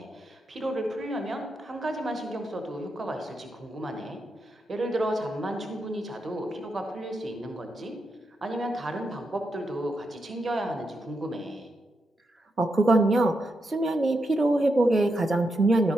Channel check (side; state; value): both; normal; correlation 0.84